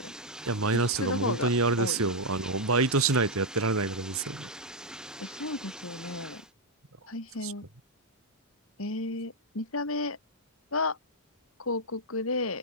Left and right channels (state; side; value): normal; both; correlation -0.01